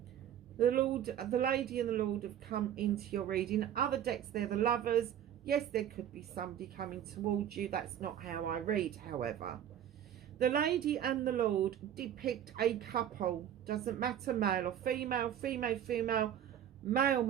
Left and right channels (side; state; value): left; quieter; 10.2 dB